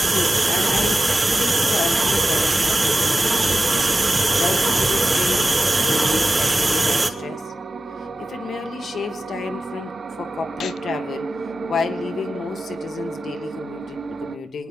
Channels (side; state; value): both; normal; correlation 0.94